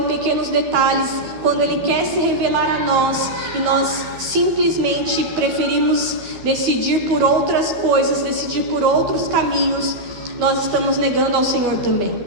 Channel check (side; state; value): left; late; 12 ms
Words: pequenos detalhes, quando Ele quer se revelar a nós, e nós simplesmente preferimos decidir por outras coisas, decidir por outros caminhos, nós estamos negando ao Senhor também.